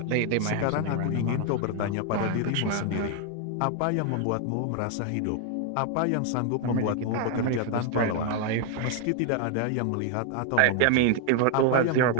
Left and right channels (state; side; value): different; both; correlation 0.00